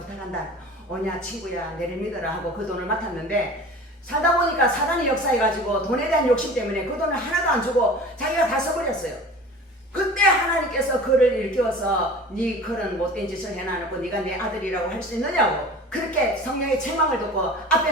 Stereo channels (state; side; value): normal; both; correlation 0.40